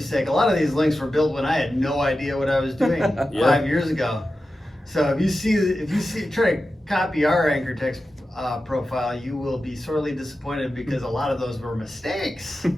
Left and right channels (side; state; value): both; normal; correlation 0.92